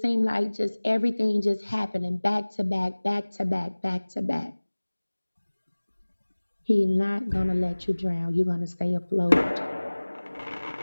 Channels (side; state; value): both; inverted; correlation -1.00